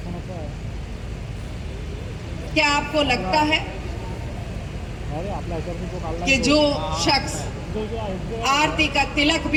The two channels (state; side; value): identical; both; correlation 1.00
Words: क्या आपको लगता है कि जो शख्स आरती का तिलक